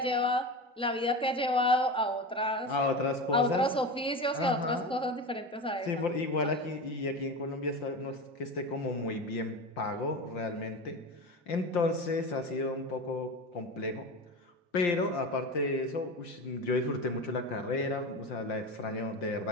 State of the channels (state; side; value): normal; both; correlation 0.26